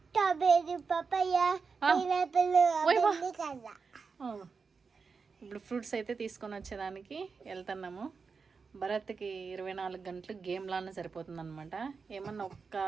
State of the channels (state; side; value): quieter; left; 5.1 dB